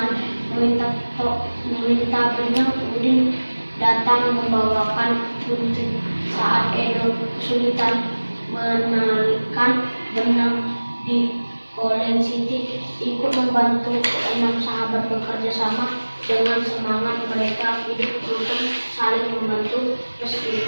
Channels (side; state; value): both; inverted; correlation -1.00